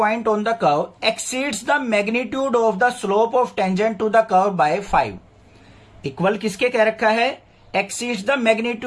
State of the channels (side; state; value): both; identical; correlation 1.00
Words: on the curve exceeds the magnitude of the slope of tangent to the curve by 5, equal किसके कह रखा है, exceeds the